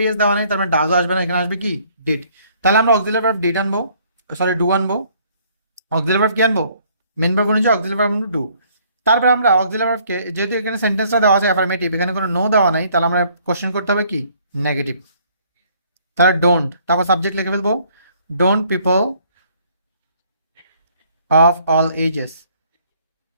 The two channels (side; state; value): both; inverted; correlation -0.62